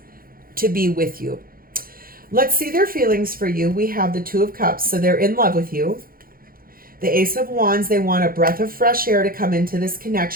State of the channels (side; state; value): left; late; 0.42 ms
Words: to be with you. Let's see their feelings for you. We have the Two of Cups, so they're in love with you. The Ace of Wands, they want a breath of fresh air to come into this